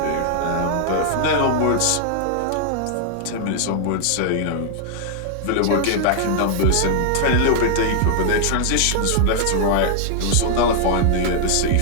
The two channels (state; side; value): different; both; correlation -0.01